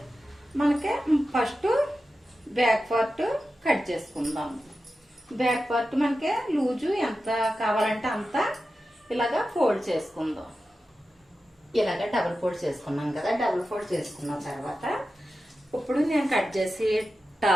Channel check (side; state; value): both; normal; correlation 0.92